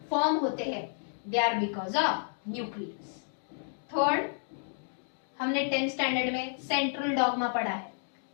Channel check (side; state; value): right; silent; digital silence